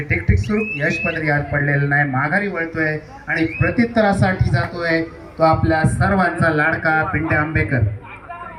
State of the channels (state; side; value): identical; both; correlation 1.00